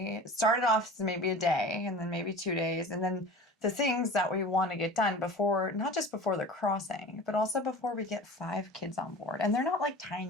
It started off as maybe a day and then maybe 2 days. And then the things that we want to get done before, not just before the crossing, but also before we get 5 kids on board. And they're not like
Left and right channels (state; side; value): normal; both; correlation 0.37